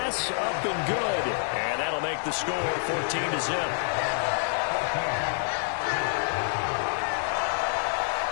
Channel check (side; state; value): right; silent; 60 dB below the other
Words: up and good. And that'll make the score 14-0.